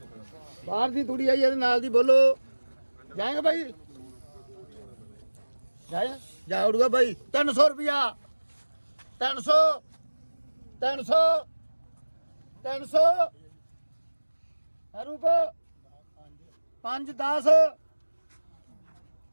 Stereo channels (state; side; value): inverted; both; correlation -1.00